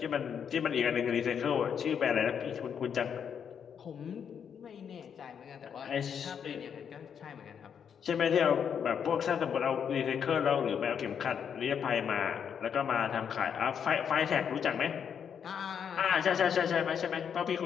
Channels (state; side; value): quieter; right; 7.6 dB